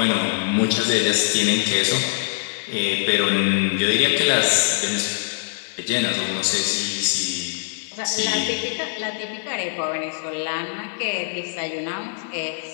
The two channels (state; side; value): silent; right; 64 dB below the other